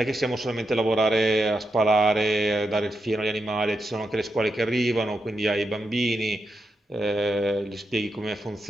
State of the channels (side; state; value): both; normal; correlation 0.85